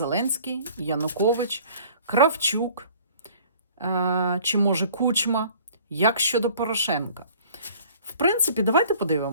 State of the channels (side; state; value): both; inverted; correlation -0.51